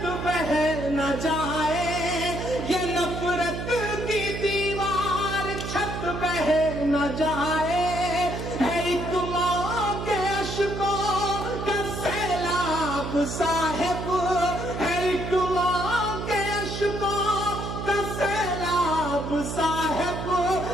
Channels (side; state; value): right; noise; hum, 5 dB below the sound